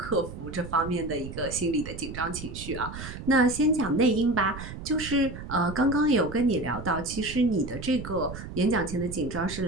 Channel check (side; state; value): right; noise; rumble, 10 dB below the sound